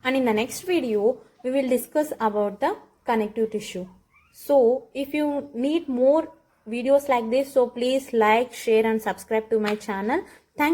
and in the next video we will discuss about the connective tissue. So if you need more videos like this, so please like, share and subscribe to my channel.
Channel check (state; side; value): identical; both; correlation 1.00